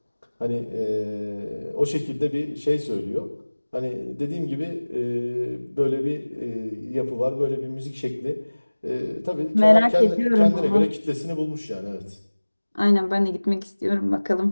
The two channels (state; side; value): inverted; both; correlation -1.00